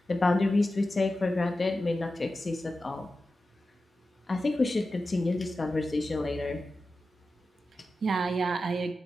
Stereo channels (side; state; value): both; normal; correlation 0.93